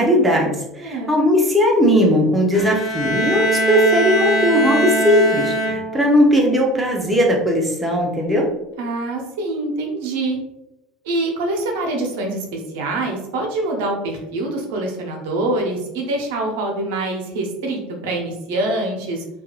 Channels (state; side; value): normal; both; correlation 0.38